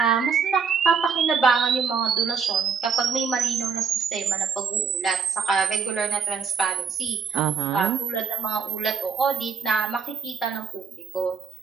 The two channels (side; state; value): left; quieter; 5.9 dB